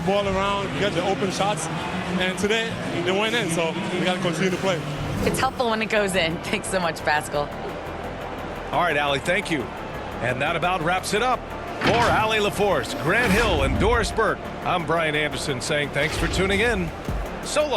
ball around, get the open shots. And today, they went in, so we got to continue to play. It's helpful when it goes in. Thanks so much, Pascal. All right, Allie, thank you. And that about wraps it up. For Allie LaForce, Grant Hill, and Doris Burke, I'm Brian Anderson saying thanks for tuning in. So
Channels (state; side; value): identical; both; correlation 1.00